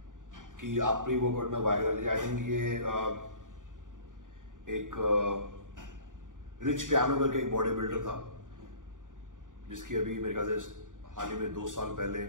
कि आप प्री वर्कआउट में वाइग्रा लीजिए। आई थिंक ये एक रिच पियानो करके एक बॉडी बिल्डर था जिसकी अभी मेरे ख्याल से हाल ही में 2 साल पहले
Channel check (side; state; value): left; late; 0.88 ms